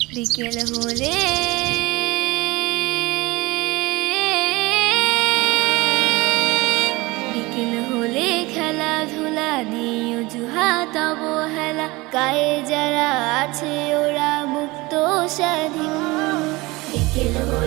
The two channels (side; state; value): left; quieter; 22.3 dB